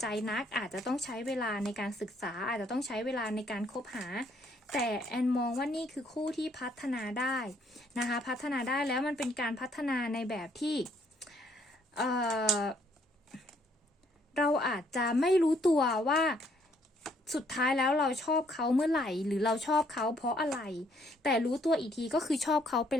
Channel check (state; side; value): normal; both; correlation 0.67